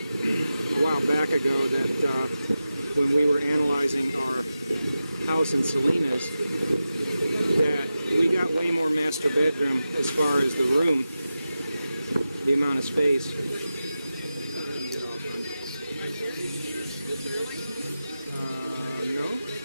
while back ago that when we were analyzing our house in Salinas, that we got way more master bedroom as far as the room, the amount of space. No?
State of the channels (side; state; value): both; inverted; correlation -0.92